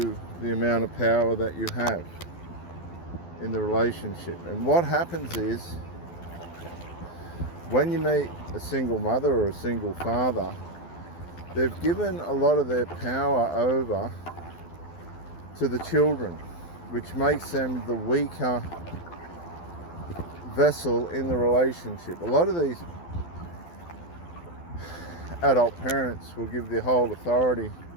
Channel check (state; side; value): late; right; 12 ms